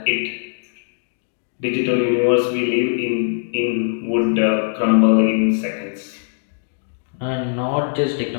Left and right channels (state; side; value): silent; right; digital silence